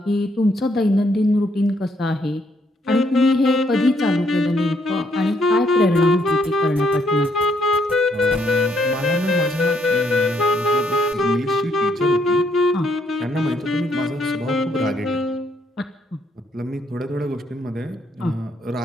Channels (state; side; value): normal; both; correlation 0.71